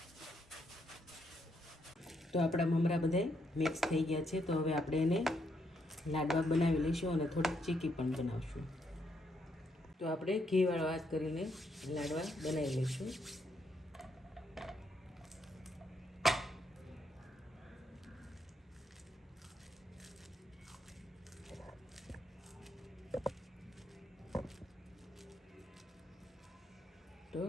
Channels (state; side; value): normal; both; correlation 0.76